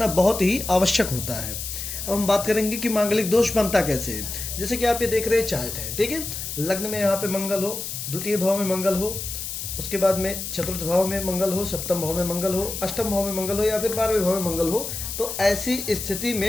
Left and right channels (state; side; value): noise; left; hiss, 6 dB below the sound